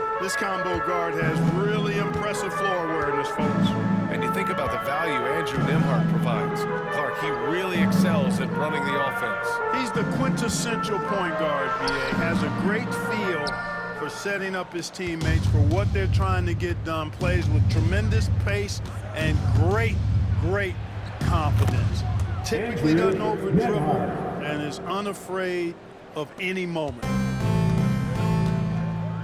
This combo guard has really impressive floor awareness, folks. And you think about the value Andrew Nembhard provides. Clark, he really excels at running the offense. He's the quintessential point guard, BA. Has a great feel for setting up his teammates for what they're trying to get done. Plays with tremendous pace and great confidence. Typically doesn't over-dribble and is unafraid of any moment.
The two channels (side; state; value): both; identical; correlation 1.00